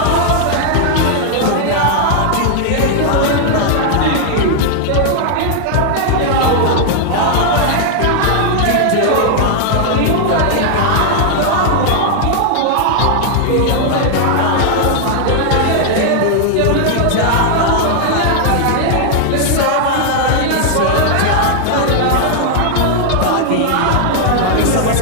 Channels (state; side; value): different; both; correlation 0.00